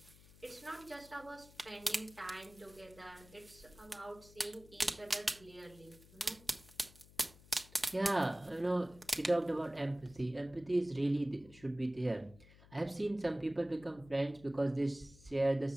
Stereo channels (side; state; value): left; noise; hum, 22 dB below the sound